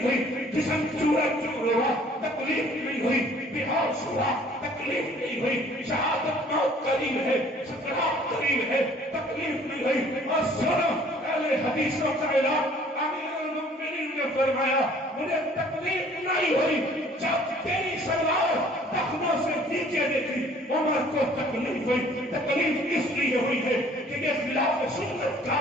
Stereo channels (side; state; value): both; normal; correlation 0.55